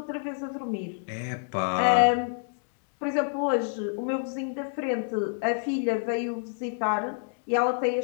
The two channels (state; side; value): silent; right; digital silence